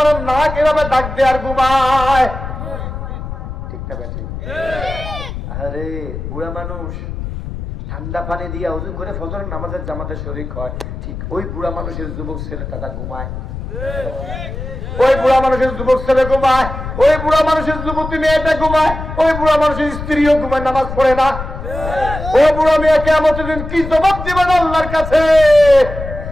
নাক এভাবে ডাক দেয় আর ঘুমায়, ঠিক না বেঠিক? আরে বুড়া মানুষ ঠান্ডা পানি দিয়ে ওযু করে ফজরের নামাজের জামাতে শরীক হয়, ঠিক ওই বুড়া মানুষের যুবক ছেলেটা ঘুমায়, ওই বুড়া মানুষের যুবক ছেলে ঘুমায়, ওই বুড়া মানুষের যুবতী মেয়েটা ঘুমায়, ওই বুড়া মানুষের স্ত্রীও ঘুমায়, নামাজ পড়ে না। ওই বুড়া মেয়ে কিয়ামতের দিন কি জবাব দিবেন আল্লাহর কাছে?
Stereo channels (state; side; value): noise; left; rumble, 8 dB below the sound